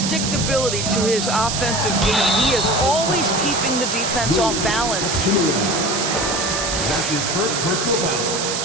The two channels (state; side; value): noise; right; hiss, 2 dB below the sound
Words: to his offensive game. He is always keeping the defense off balance. That's his first personal